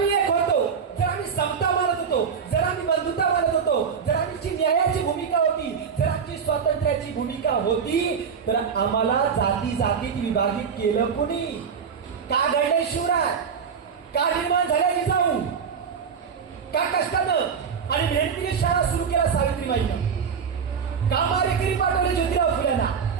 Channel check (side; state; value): left; quieter; 6.5 dB